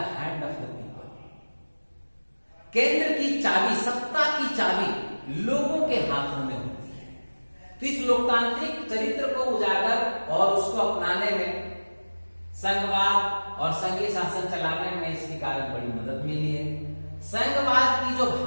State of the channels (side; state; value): both; inverted; correlation -1.00